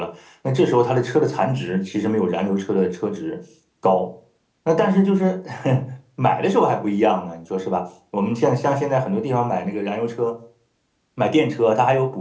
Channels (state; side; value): identical; both; correlation 1.00